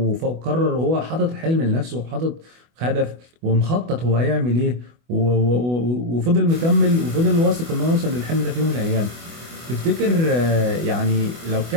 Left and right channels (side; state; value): left; late; 24 ms